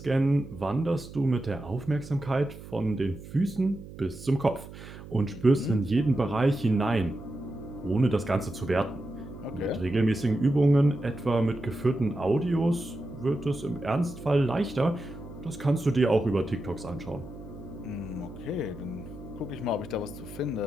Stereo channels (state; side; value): noise; right; hum, 15 dB below the sound